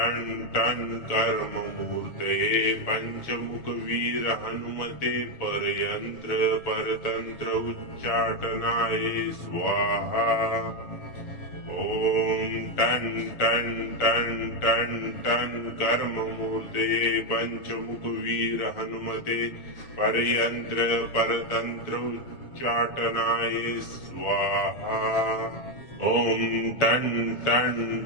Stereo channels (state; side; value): late; right; 7.1 ms